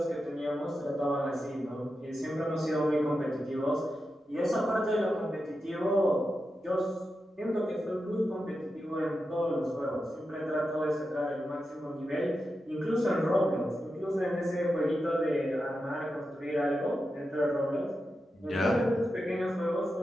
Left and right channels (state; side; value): normal; both; correlation 0.89